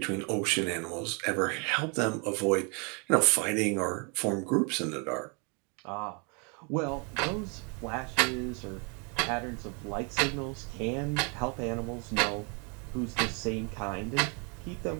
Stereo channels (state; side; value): quieter; left; 34.3 dB